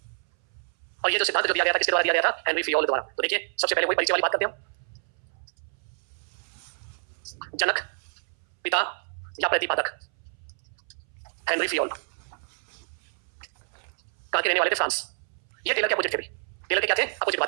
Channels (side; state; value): left; silent; 59 dB below the other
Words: और ये जो सिद्धांत जो दिया गया था किसके द्वारा दिया गया था? हेनरी फियोल द्वारा। तो देखिए सबसे पहले वही परिचय वाली बात करते हैं हम। जनक, पिता या प्रतिपादक हेनरी फियोल। कहां के रहने वाले थे? फ्रांस। ये टेलर के अपोजिट थे भी। टेलर के क्या थे? अपोजिट